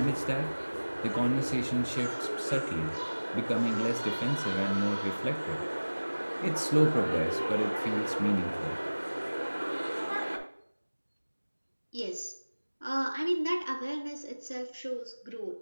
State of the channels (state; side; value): inverted; both; correlation -1.00